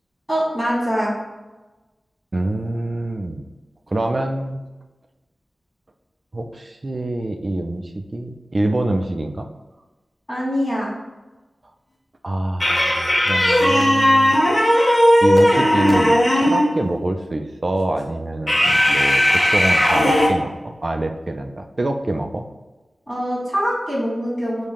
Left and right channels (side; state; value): both; normal; correlation 0.96